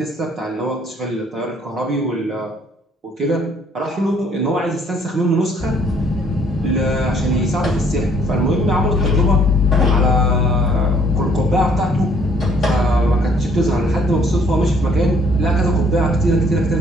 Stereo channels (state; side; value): normal; both; correlation 0.63